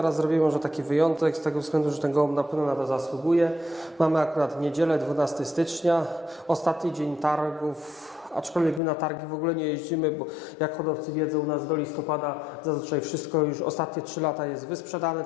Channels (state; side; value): drops out; right; at 8.8 s